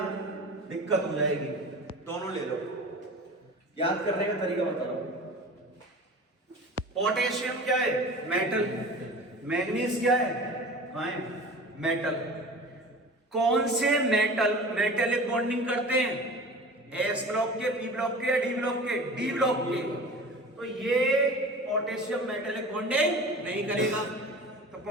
दिक्कत हो जाएगी। दोनों ले लो, याद करने का तरीका बता रहा हूं। पोटेशियम क्या है? मेटल। मैग्नीज क्या है? आयन। मेटल। कौन से मेटल मेटेलिक बॉन्डिंग करते हैं? S ब्लॉक के, P ब्लॉक के या D ब्लॉक के? D ब्लॉक के। तो ये पोटेशियम मेटेलिक बॉन्डिंग नहीं करेगा। तो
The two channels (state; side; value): normal; both; correlation 0.38